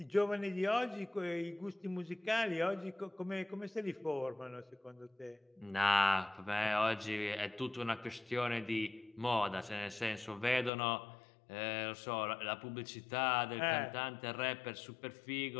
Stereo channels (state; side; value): drops out; right; at 10.7 s